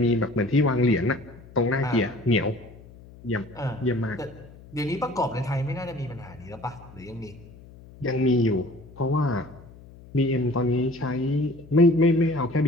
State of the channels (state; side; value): noise; left; hum, 21 dB below the sound